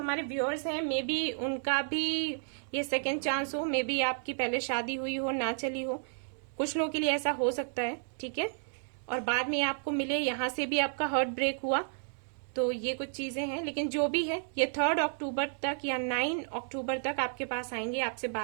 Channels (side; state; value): left; silent; digital silence